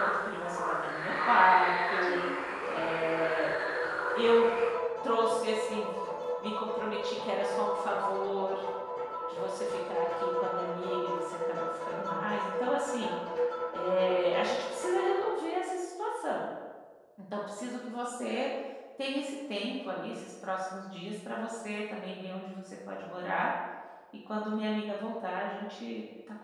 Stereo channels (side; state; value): both; identical; correlation 1.00